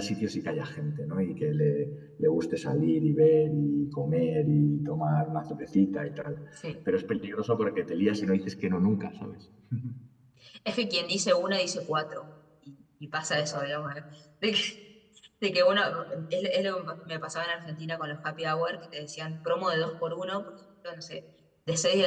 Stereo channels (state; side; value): identical; both; correlation 1.00